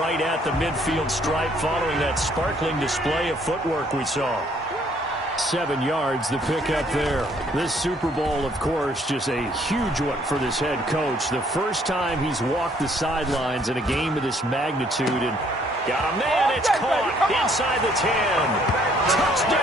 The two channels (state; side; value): normal; both; correlation 0.64